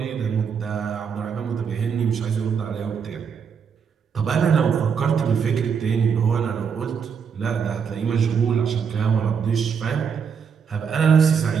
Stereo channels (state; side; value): quieter; left; 6.6 dB